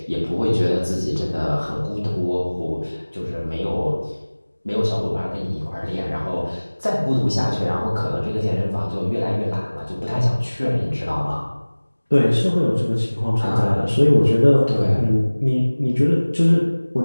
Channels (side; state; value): both; inverted; correlation -1.00